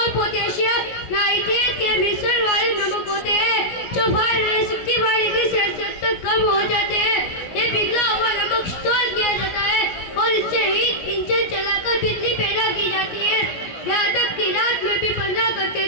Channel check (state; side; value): late; right; 17 ms